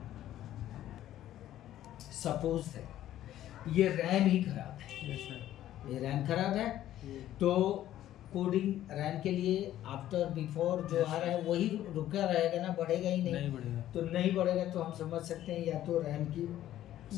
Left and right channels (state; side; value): quieter; right; 12.8 dB